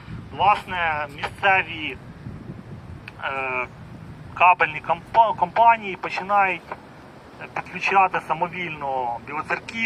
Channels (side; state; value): both; identical; correlation 1.00